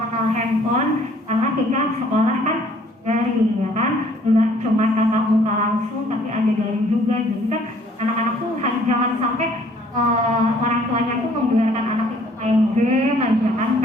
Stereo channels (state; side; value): normal; both; correlation 0.59